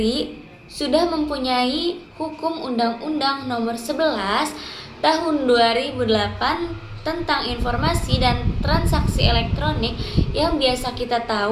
sudah mempunyai hukum Undang-Undang Nomor 11 Tahun 2008 tentang informasi dan transaksi elektronik yang biasa kita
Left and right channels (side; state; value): both; identical; correlation 1.00